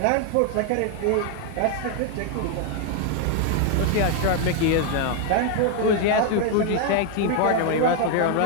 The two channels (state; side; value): different; both; correlation 0.00